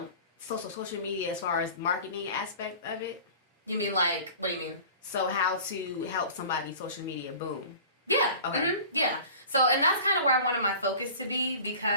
social media as far as marketing aspect of it? You mean like, what do you mean? So how to help somebody social media boom? Yeah. Okay. Yeah. So, and that's kind of where I wanted my focus to be,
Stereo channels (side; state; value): both; inverted; correlation -0.42